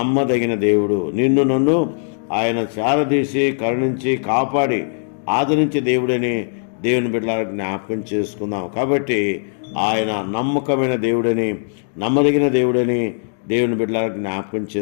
దేవుడు. నిన్ను నన్ను ఆయన చారదీసి కరుణించి కాపాడి ఆదరించే దేవుడని దేవుని బిడ్డలారా జ్ఞాపకం చేసుకుందాం. కాబట్టి ఆయన నమ్మకమైన దేవుడని, నమ్మదగిన దేవుడని దేవుని బిడ్డలారా జ్ఞాపకం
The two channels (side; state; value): right; silent; digital silence